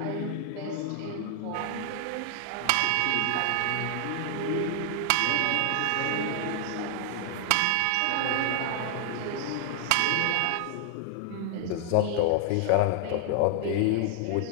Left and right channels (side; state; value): both; different; correlation 0.00